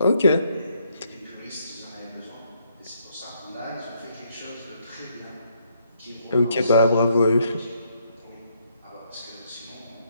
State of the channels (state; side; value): inverted; both; correlation -0.72